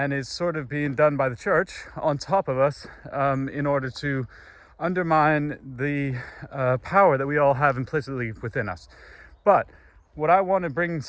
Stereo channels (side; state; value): both; identical; correlation 1.00